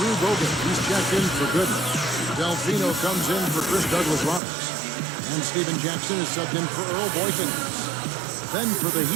Bogut, he's checked in for Gooden. Delfino comes in for Chris Douglas Roberts. And Steven Jackson is subbed in for Earl Boykins. Then for the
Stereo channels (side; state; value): left; drops out; at 4.4 s